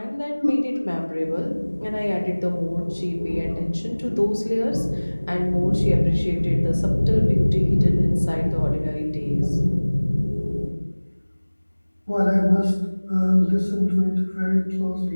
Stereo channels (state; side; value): inverted; both; correlation -1.00